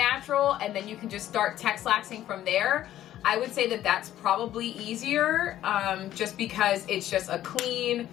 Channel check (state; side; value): quieter; right; 12.7 dB